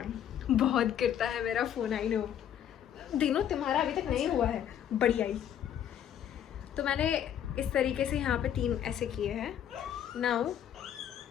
बहुत गिरता है मेरा फोन, आई नो। दिनों तुम्हारा अभी तक नहीं हुआ है, बढ़िया ही। तो मैंने इस तरीके से यहाँ पे 3 ऐसे किए हैं। नाउ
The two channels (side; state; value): right; quieter; 9.9 dB